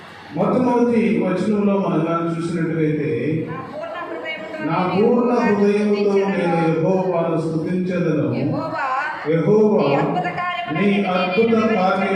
మొట్టమొదటి వచనంలో మనం చూసినట్లయితే, నా పూర్ణ హృదయముతో నేను యెహోవాను స్తుతించెదను, యెహోవా నీ అద్భుత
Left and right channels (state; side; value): identical; both; correlation 1.00